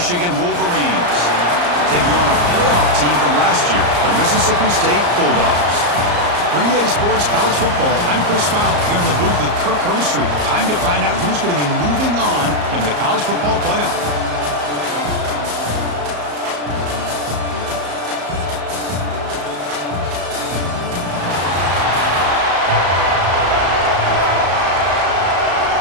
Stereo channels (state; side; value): late; left; 34 ms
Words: Wolverines, taking on a playoff team from last year, the Mississippi State Bulldogs. For EA Sports College Football, I'm Chris Fowler here in the booth with Kirk Hermstreet. Time to find out who's going to be moving on in the college football playoff.